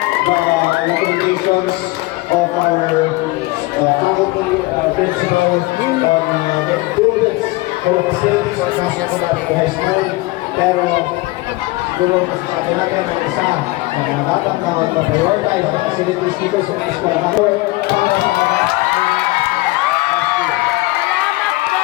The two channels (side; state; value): right; quieter; 21.1 dB